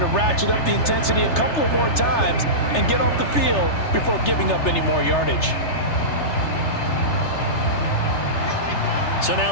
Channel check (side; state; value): right; late; 3.3 ms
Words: ratchet up the intensity a couple of more times and get off the field before giving up any more yardage. So